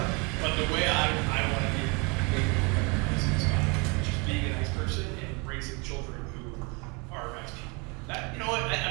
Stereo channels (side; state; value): left; quieter; 30.2 dB